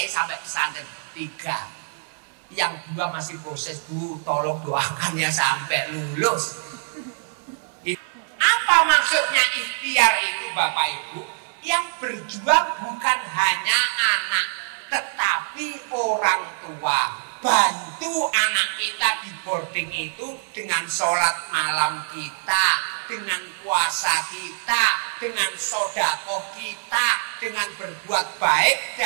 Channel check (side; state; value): left; silent; 63 dB below the other